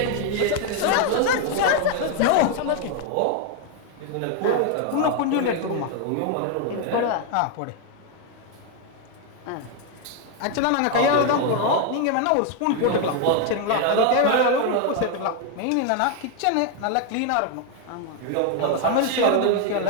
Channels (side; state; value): both; different; correlation 0.01